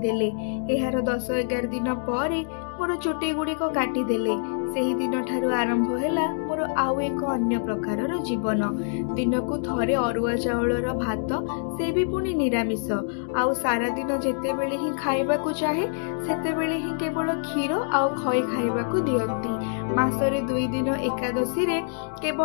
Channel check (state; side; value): silent; right; digital silence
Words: एहार 10-11 दिन परे मोर चुटी गुड़िक काटी देले। सेही दिन ठारु आरंभ हैला मोर आउ एक अन्य प्रकारर जीवन। दिन को थरे अरुआ चाउलर भात, से भी पुणी निरामिष। आउ सारा दिन जेतेबेले ही खाइबाकू चाहे सेतेबेले ही केवल क्षीर आउ खई खाइबाकू दियंती। मासरे 2 दिन एकादशी रे